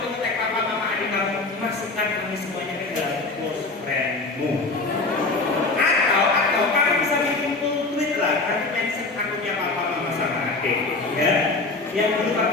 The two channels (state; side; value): quieter; right; 3.5 dB